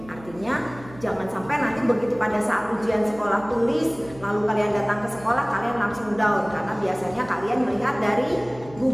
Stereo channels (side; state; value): right; noise; hum, 20 dB below the sound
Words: Artinya jangan sampai nanti begitu pada saat ujian sekolah tulis, lalu kalian datang ke sekolah kalian langsung down, karena biasanya kalian melihat dari